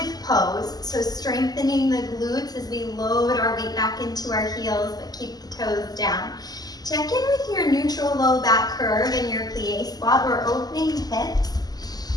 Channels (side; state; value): right; late; 0.19 ms